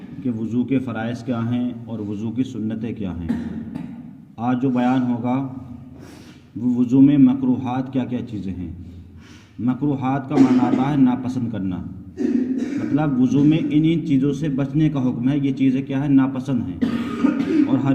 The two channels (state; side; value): identical; both; correlation 1.00